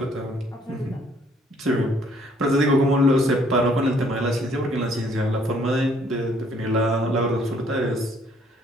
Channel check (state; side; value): normal; both; correlation 0.63